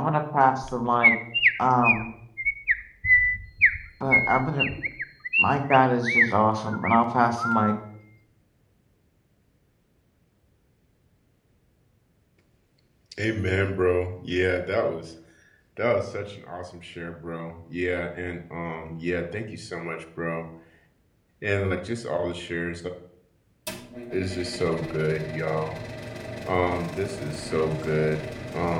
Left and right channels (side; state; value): both; identical; correlation 1.00